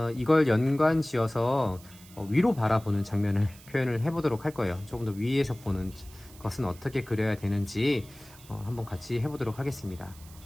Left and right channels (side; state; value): right; noise; hiss, 22 dB below the sound